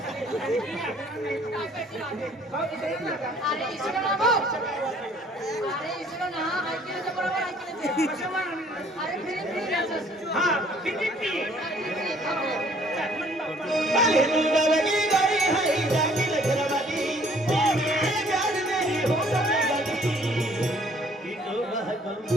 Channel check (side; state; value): both; normal; correlation 0.59